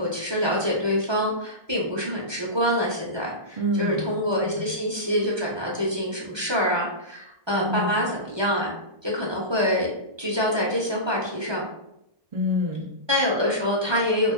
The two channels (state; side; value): late; left; 1.2 ms